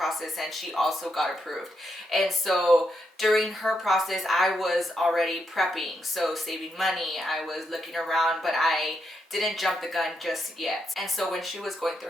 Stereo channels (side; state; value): both; normal; correlation 0.81